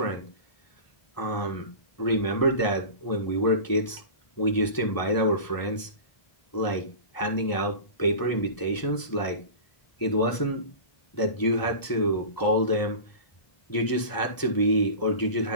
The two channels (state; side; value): late; right; 1.0 ms